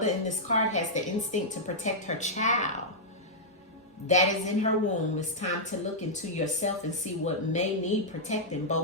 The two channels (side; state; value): both; normal; correlation -0.09